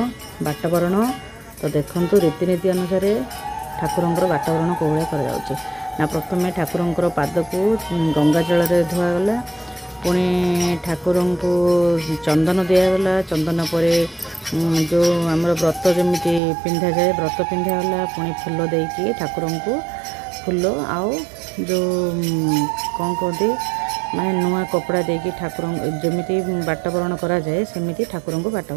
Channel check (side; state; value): left; drops out; at 16.4 s